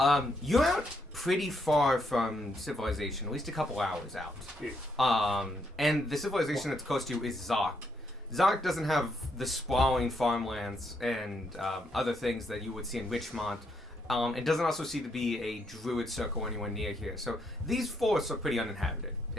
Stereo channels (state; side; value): normal; both; correlation 0.76